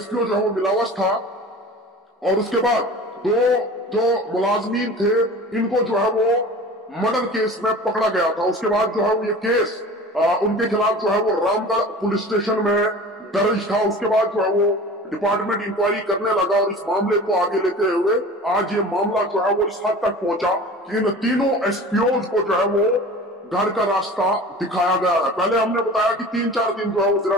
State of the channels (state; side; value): normal; both; correlation 0.39